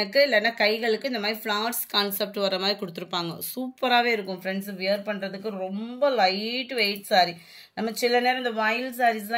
இல்லைன்னா கைகளுக்கு இந்த மாதிரி ஃப்ளார்ஸ் கான்செப்ட் வர மாதிரி கொடுத்துருப்பாங்க. சூப்பராகவே இருக்கும் ஃப்ரெண்ட்ஸ். வியர் பண்ணுறதுக்கு ரொம்ப லைட் வெயிட் சாரி. நம்ம சில நேரம் இந்த வாயில்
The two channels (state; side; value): identical; both; correlation 1.00